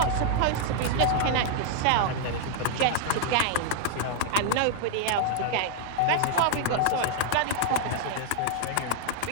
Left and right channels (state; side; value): different; both; correlation 0.00